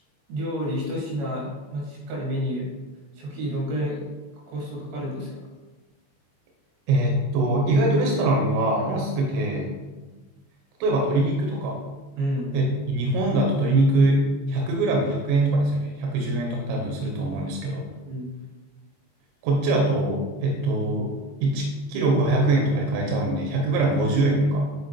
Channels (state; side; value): late; left; 22 ms